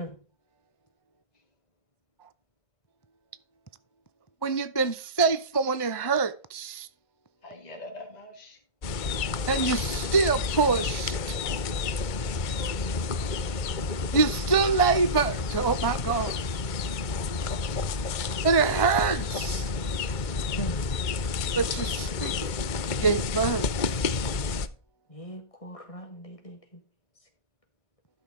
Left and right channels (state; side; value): late; right; 1.5 ms